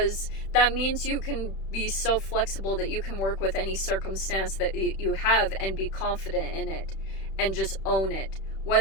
that means you can be so flexible that you can work with any circumstance that you have and be confident in it and just own it.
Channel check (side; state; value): right; late; 31 ms